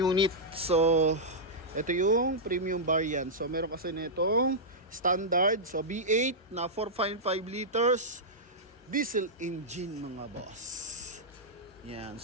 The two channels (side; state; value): both; normal; correlation -0.09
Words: So ito yung premium variant. So meron kasi nitong standard, so V8 na 4.5 liters diesel engine mga boss. Yan,